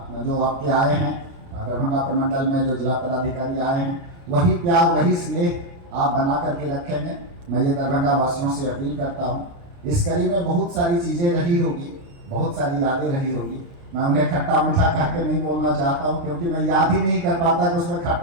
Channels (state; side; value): late; left; 29 ms